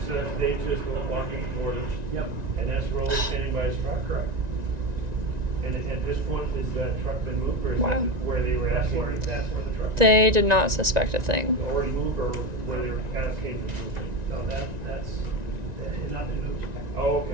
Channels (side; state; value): left; late; 1.9 ms